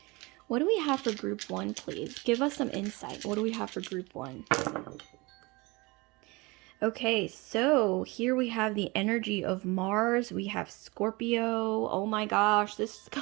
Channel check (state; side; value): quieter; left; 24.7 dB